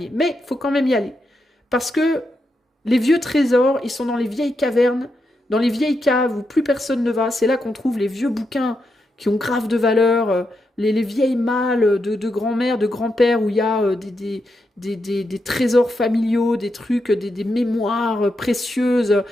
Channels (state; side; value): normal; both; correlation 0.84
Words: mais il faut quand même y aller. Parce que les vieux trésors, ils sont dans les vieilles cavernes, dans les vieilles caves où plus personne ne va. C'est là qu'on trouve les vieux bouquins qui ont grave de valeur, les vieilles malles de grand-mère, de grand-père, où il y a des trésors familiaux, des trucs, des mémoires précieuses.